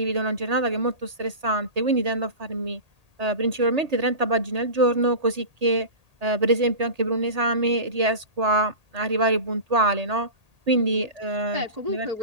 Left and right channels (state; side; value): late; left; 1.8 ms